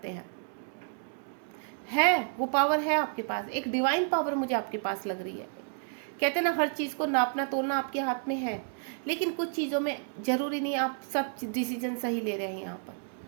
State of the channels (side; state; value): left; silent; 57 dB below the other